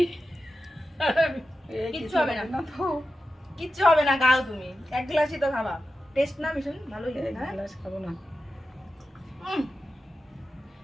কিচ্ছু হবে না, কিচ্ছু হবে না, খাও তুমি। এক গ্লাসই তো খাবা। টেস্ট না ভীষণ ভালোই লাগে। হ্যাঁ, গ্লাস খাবো না।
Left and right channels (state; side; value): normal; both; correlation 0.91